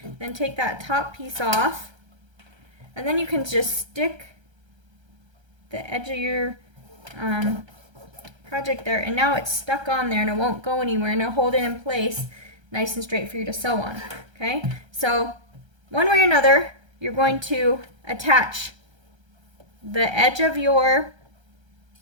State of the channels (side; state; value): left; late; 1.3 ms